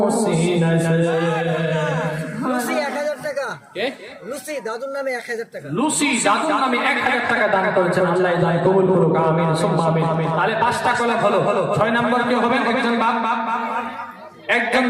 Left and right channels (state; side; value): identical; both; correlation 1.00